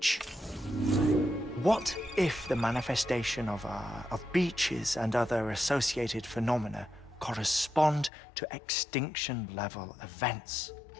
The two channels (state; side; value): drops out; right; at 8.1 s